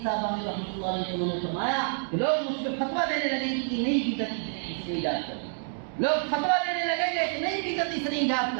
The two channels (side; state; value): left; silent; digital silence